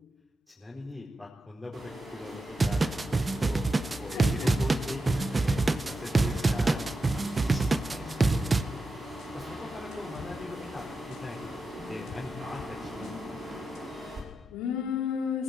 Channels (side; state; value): both; normal; correlation 0.88